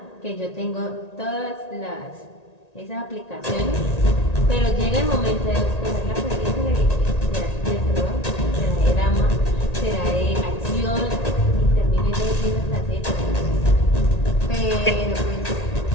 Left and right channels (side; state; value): right; late; 1.9 ms